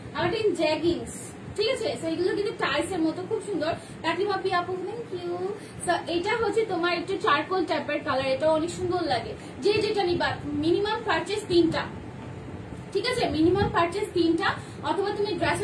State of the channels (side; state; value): both; identical; correlation 1.00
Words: জ্যাগিংস। ঠিক আছে, এগুলো কিন্তু টাইসের মতো, খুব সুন্দর। কাকিমা পি আপু থ্যাংক ইউ। এটা হচ্ছে তোমার একটু চারকোল টাইপের কালার, এটা অনেক সুন্দর লাগে। যে যেটা নিবা, মিনিমাম পারচেজ 3টা। ঠিক আছে, মিনিমাম পারচেজ 3টা, অথবা তুমি